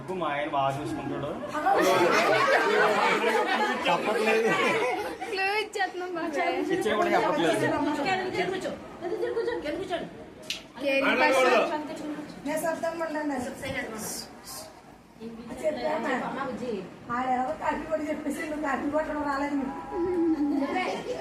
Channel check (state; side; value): identical; both; correlation 1.00